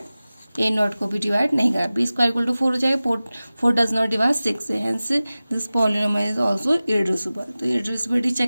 A not को भी डिवाइड नहीं कर रहा है. P स्क्वायर इक्वल टू 4 हो जाएगा. 4 does not divide 6, hence this polynomial is also irreducible. तो इरेड्यूसिबिलिटी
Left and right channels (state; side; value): inverted; both; correlation -0.97